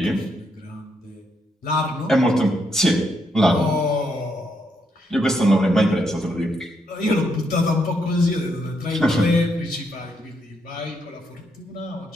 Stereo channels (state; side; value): normal; both; correlation 0.77